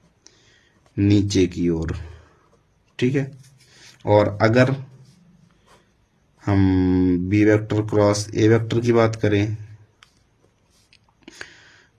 नीचे की ओर, ठीक है। और अगर हम B vector cross A vector की बात करें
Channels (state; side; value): identical; both; correlation 1.00